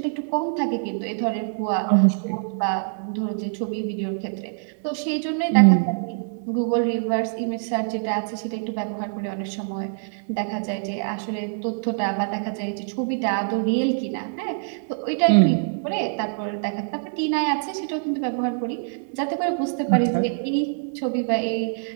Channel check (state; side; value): silent; left; digital silence